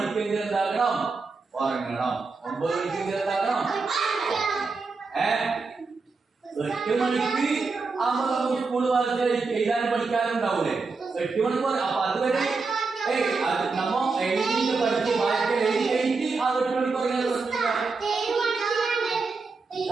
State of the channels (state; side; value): quieter; left; 4.3 dB